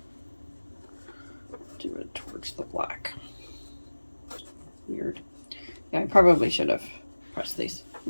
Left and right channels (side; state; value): both; inverted; correlation -1.00